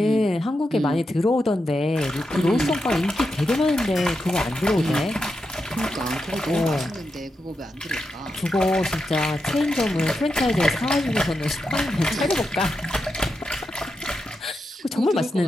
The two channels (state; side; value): normal; both; correlation 0.87